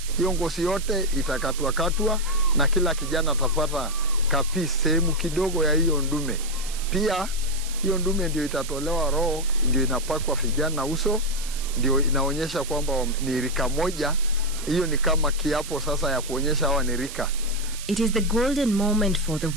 Hiyo ngozi yote itakatwa na kila kijana atapata kapi sehemu kidogo ya hiyo ndume. Pia hiyo ndume ndio itatolewa roho, ndio inapakwa vijana uso, ndio inaonyesha kwamba ni rika moja. Hiyo ni kama kiapo sasa ya kuonyesha hawa ni rika. It is the golden moment for the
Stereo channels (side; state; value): right; noise; hiss, 11 dB below the sound